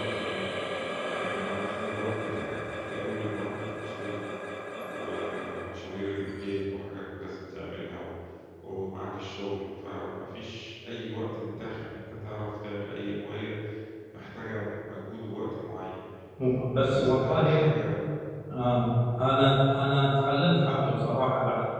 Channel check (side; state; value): both; identical; correlation 1.00